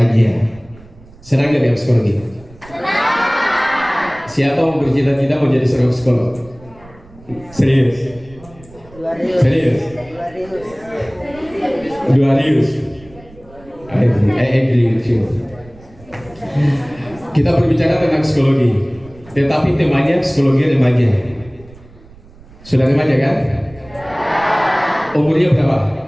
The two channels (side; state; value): right; noise; rumble, 23 dB below the sound